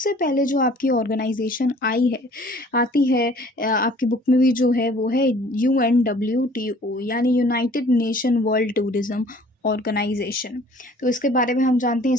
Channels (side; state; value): both; normal; correlation 0.53